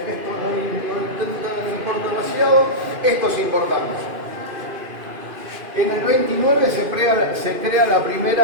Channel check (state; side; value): late; left; 2.5 ms